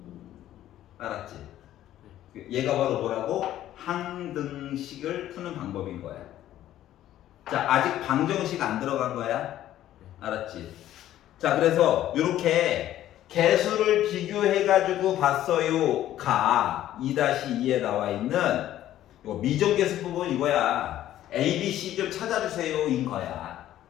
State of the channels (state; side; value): quieter; right; 12.8 dB